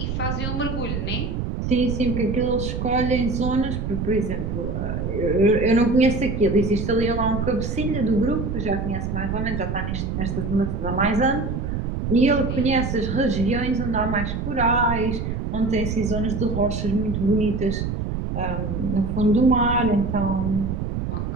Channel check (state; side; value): noise; right; rumble, 3 dB below the sound